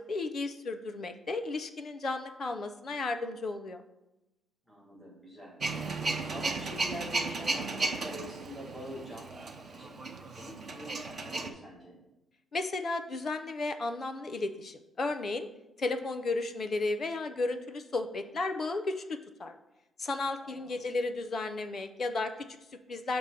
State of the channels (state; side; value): normal; both; correlation 0.80